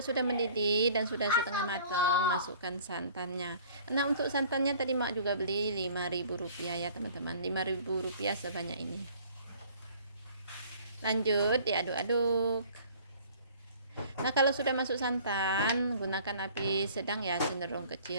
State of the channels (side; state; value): both; inverted; correlation -0.52